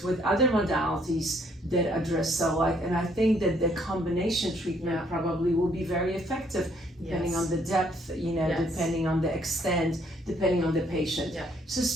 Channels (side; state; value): both; normal; correlation 0.66